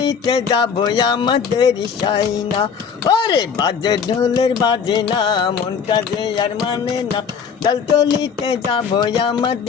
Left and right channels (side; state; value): right; quieter; 6.6 dB